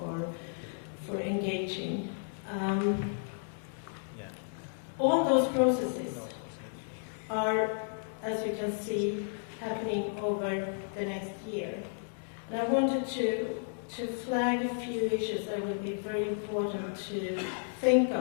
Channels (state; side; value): silent; right; digital silence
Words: engaging. All those processes are, as you can see, happening over the next year. And I wanted to flag a few issues that will be very important to think